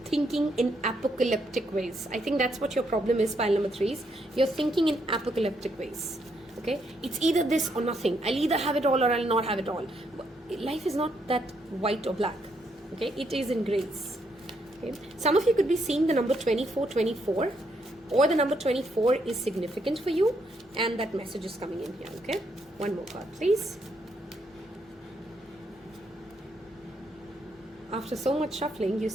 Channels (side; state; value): both; normal; correlation 0.75